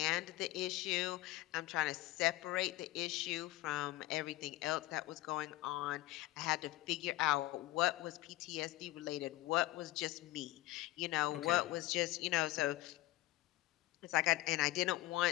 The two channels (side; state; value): right; quieter; 17.4 dB